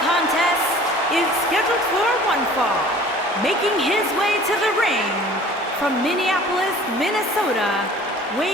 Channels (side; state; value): both; normal; correlation 0.48